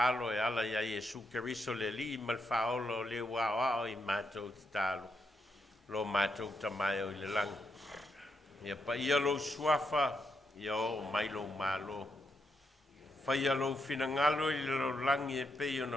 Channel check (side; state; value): both; normal; correlation 0.81